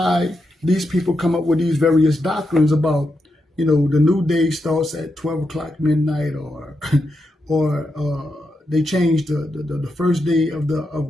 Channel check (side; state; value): both; normal; correlation 0.85